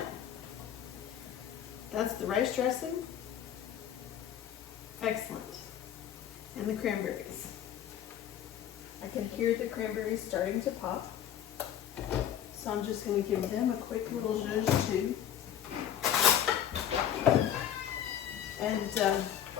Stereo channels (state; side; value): quieter; right; 10.0 dB